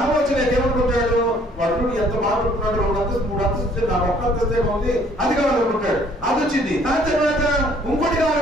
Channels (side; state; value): both; normal; correlation 0.60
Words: వచ్చినాక ఏమనుకుంటాడు? వాడు ఎంత బాగుంటున్నాడు, 2 అంతస్తు 3 అంతస్తు నాకు 1 అంతస్తే ఉంది, అది కావాలనుకుంటాడు. అది వచ్చింది. దాని తర్వాత ఇంకోటి